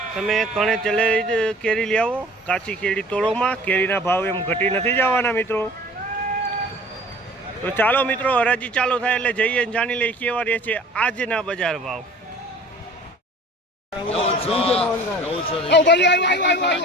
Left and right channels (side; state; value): both; normal; correlation 0.47